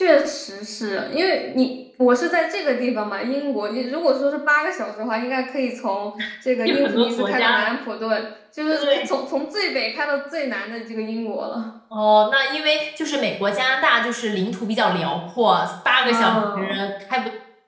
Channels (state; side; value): identical; both; correlation 1.00